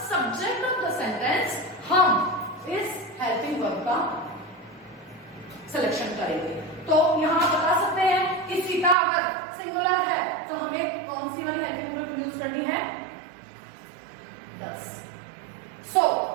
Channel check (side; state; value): left; drops out; at 9.0 s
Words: subject of the sentence, हम इस हेल्पिंग वर्ब का सिलेक्शन करेंगे। तो यहाँ बता सकते हैं कि सीता अगर सिंगुलर है तो हमें कौन सी वाली हेल्पिंग वर्ब यूज करनी है, does. So,